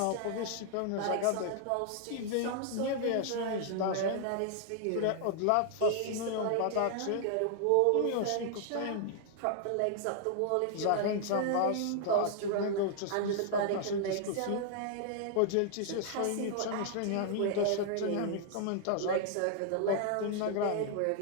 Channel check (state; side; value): different; both; correlation -0.01